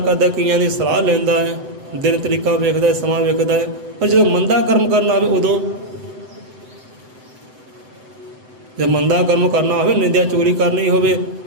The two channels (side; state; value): left; late; 7.9 ms